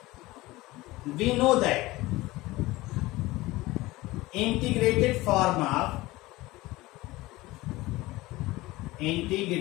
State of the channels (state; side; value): quieter; right; 19.6 dB